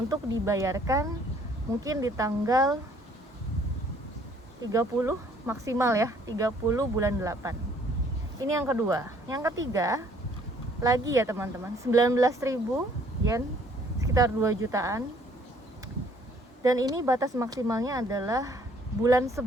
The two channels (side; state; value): both; normal; correlation 0.60